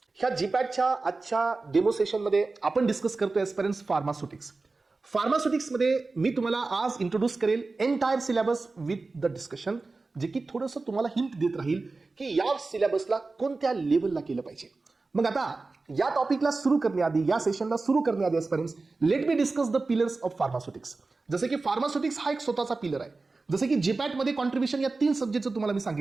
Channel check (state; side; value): quieter; left; 3.7 dB